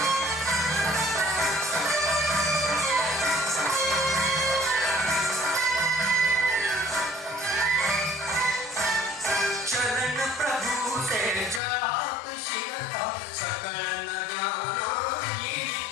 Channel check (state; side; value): drops out; right; at 11.6 s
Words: चरण प्रभु से जळात शिरता सकळ न ज्ञाना येई